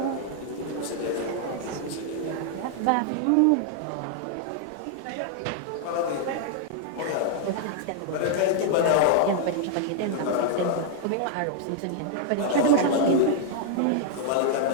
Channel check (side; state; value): both; different; correlation 0.00